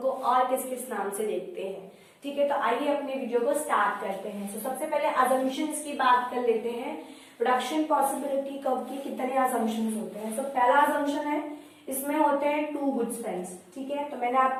को और किस किस नाम से देखते हैं। ठीक है, तो आइए अपने वीडियो को स्टार्ट करते हैं। तो सबसे पहले अजम्पशंस की बात कर लेते हैं। प्रोडक्शन पॉसिबिलिटी कर्व के कितने अजम्पशंस होते हैं? तो पहला अजम्पशन है, इसमें होते हैं टू गुड्स फ्रेंड्स। ठीक है, तो मैंने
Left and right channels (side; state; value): both; identical; correlation 1.00